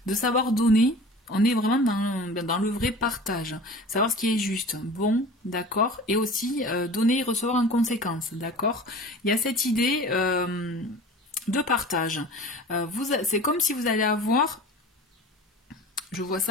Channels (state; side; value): normal; both; correlation 0.39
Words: De savoir donner... On est vraiment dans le vrai partage, savoir ce qui est juste, bon, d'accord, et aussi donner et recevoir en conséquence, d'accord. Il y a cette idée de partage. C'est comme si vous allez avoir, je vois